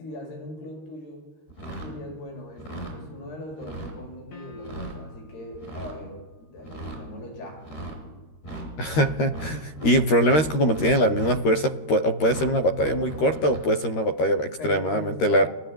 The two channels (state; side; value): late; right; 13 ms